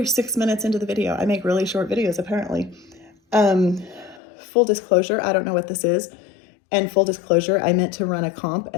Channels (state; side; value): drops out; right; at 4.2 s